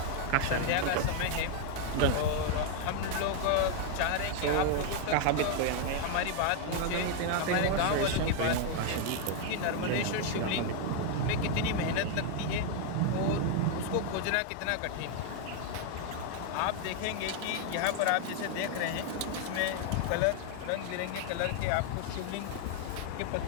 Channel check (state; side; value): different; both; correlation 0.00